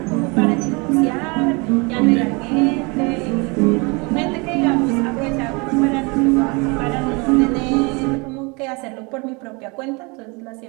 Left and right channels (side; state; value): left; quieter; 29.0 dB